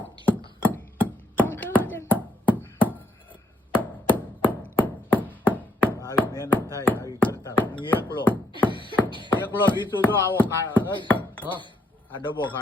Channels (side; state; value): both; normal; correlation 0.73